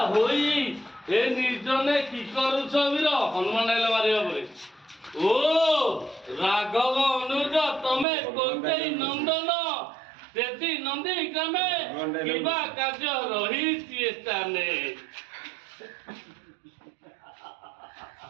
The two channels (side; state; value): left; drops out; at 8.1 s